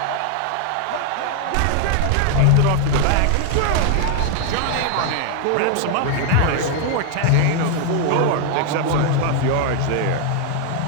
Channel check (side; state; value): both; different; correlation 0.00